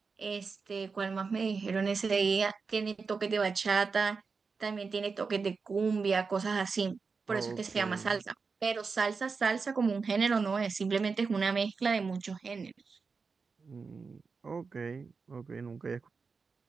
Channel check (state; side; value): quieter; left; 4.9 dB